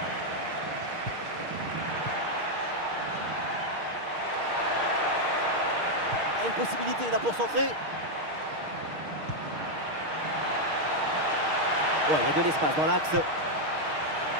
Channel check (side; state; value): left; late; 6.5 ms